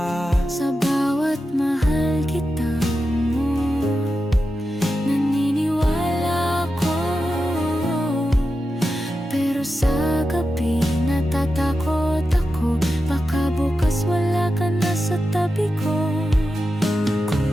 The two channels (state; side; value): normal; both; correlation 0.90